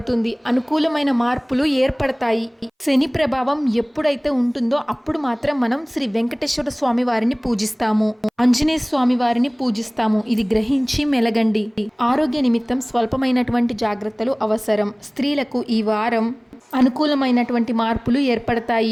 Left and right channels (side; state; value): both; identical; correlation 1.00